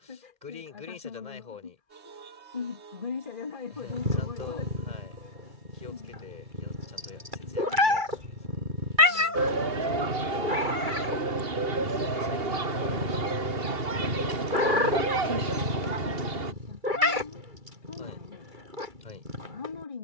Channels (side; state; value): left; late; 2.3 ms